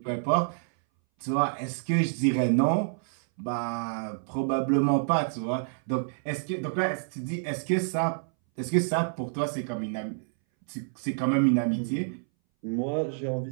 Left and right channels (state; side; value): silent; left; 59 dB below the other